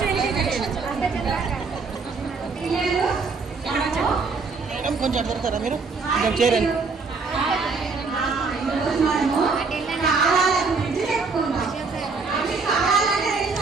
కొంచెం దొరుకుతారా మీరు కొంచెం చేరండి.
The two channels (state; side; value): quieter; left; 4.5 dB